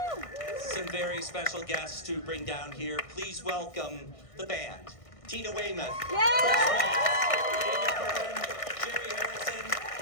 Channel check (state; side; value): late; right; 1.6 ms